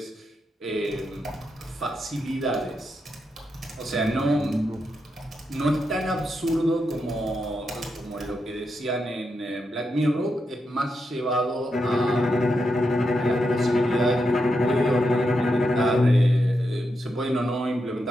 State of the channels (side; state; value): both; normal; correlation 0.85